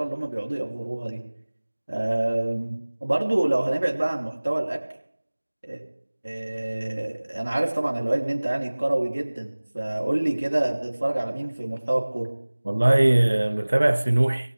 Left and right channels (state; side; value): inverted; both; correlation -1.00